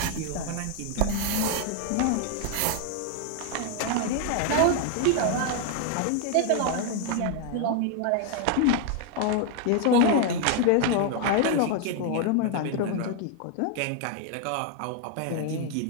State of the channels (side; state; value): both; different; correlation 0.00